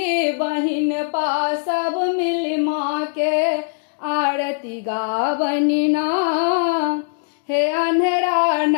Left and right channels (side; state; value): right; silent; digital silence